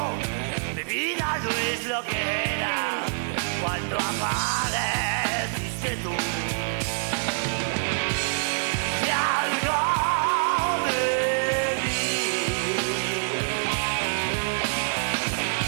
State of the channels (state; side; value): silent; left; digital silence